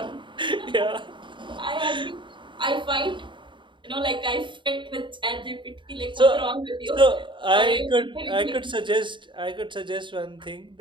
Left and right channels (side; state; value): left; late; 0.23 ms